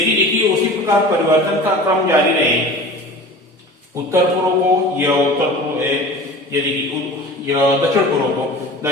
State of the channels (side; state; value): both; normal; correlation 0.38